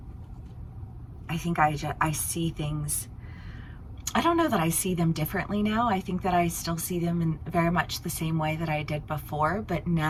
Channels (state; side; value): identical; both; correlation 1.00